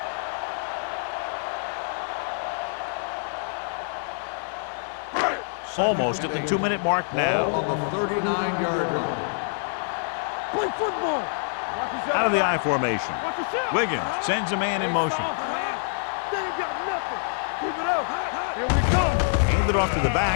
Almost at the 2-minute mark now. Ball on the 39-yard line. Play football. Out of the I formation. Watch the shot. Wiggins sends a man in motion. They ain't got nothing. Keep it up. Here we come. Handed off to the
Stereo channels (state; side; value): silent; right; digital silence